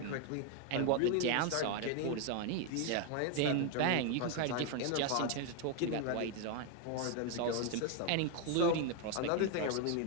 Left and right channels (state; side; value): different; both; correlation 0.01